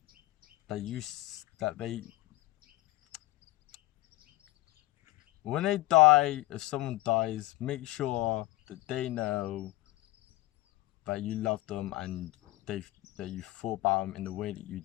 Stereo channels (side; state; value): right; quieter; 18.3 dB